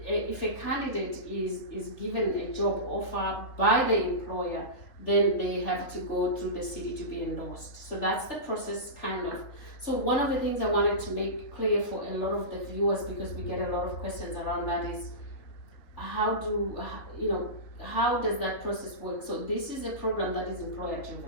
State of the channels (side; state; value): right; late; 3.7 ms